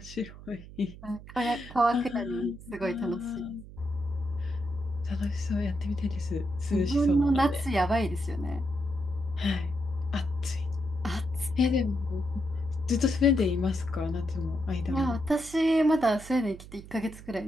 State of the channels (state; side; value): noise; right; hum, 16 dB below the sound